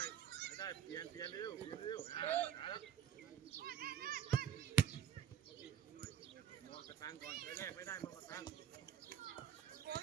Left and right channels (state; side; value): quieter; left; 8.9 dB